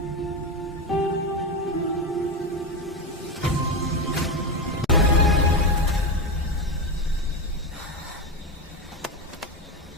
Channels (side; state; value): both; normal; correlation 0.15